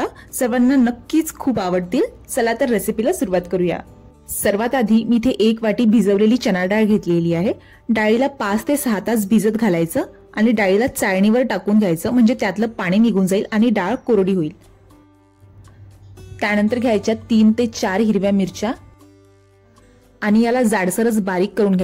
सर्वांना नक्कीच खूप आवडतील। चला तर रेसिपीला सुरुवात करूया। सर्वात आधी मी इथे 1 वाटी भिजवलेली चणा डाळ घेतलेली आहे। डाळीला 5 ते 6 तास भिजत घालायचं आणि डाळीला चाळणीवर टाकून घ्यायचं, म्हणजे त्यातलं पाणी निघून जाईल आणि डाळ कोरडी होईल। त्यानंतर घ्यायच्या 3 ते 4 हिरव्या मिरच्या आणि याला जाडसरच बारीक करून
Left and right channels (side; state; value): both; identical; correlation 1.00